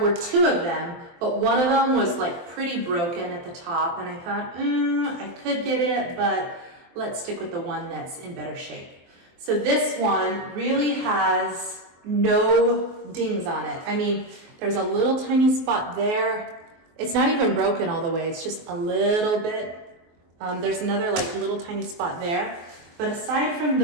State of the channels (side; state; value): left; late; 23 ms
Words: two of them, but one of them was like pretty broken at the top. And I thought, I could get it, but let's stick with the one that's in better shape. So this one really has no dings on it. I mean, There's a little tiny spot there. It's not even broken all the way, it's just a little bit. There's another like little tiny spot there. But aside from